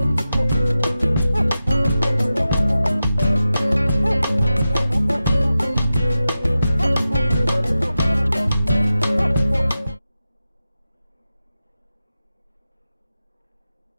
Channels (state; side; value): inverted; both; correlation -0.93